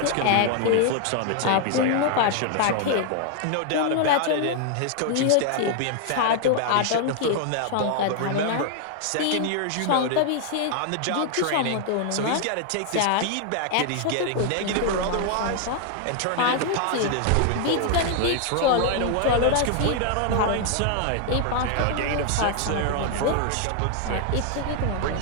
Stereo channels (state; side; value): different; both; correlation 0.00